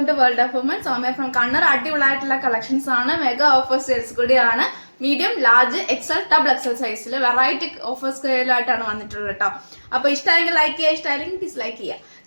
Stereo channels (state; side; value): inverted; both; correlation -1.00